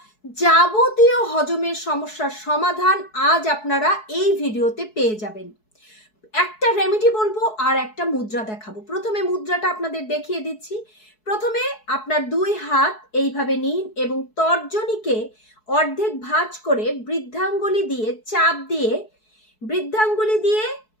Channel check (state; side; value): late; right; 4.7 ms